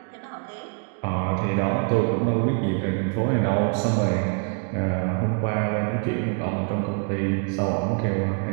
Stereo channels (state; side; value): quieter; left; 39.4 dB